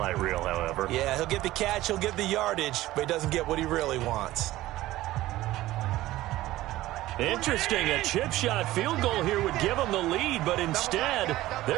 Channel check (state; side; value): quieter; left; 16.3 dB